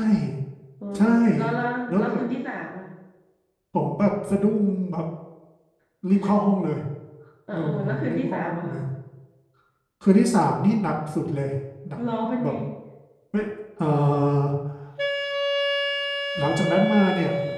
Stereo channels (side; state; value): both; identical; correlation 1.00